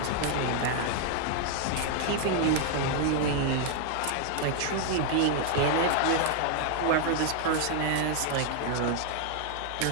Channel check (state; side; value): different; both; correlation 0.00